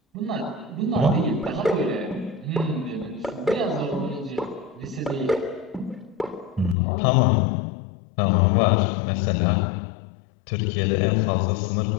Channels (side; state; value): right; drops out; at 6.8 s